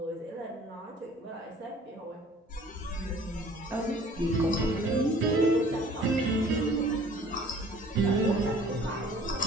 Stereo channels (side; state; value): both; normal; correlation 0.52